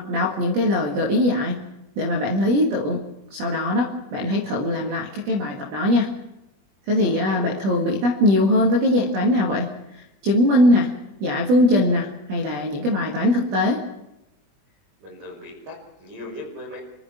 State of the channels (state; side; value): late; left; 21 ms